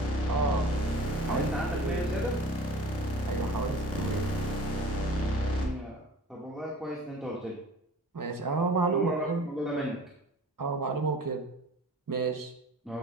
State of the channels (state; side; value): normal; both; correlation 0.43